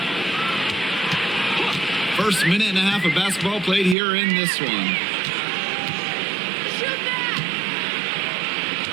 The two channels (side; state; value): left; drops out; at 4.0 s